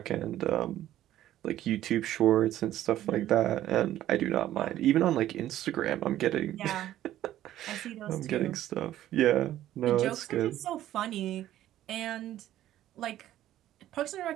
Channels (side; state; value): left; quieter; 13.1 dB